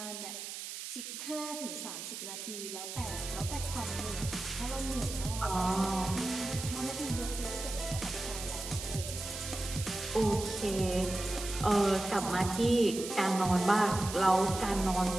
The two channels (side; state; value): right; noise; hiss, 8 dB below the sound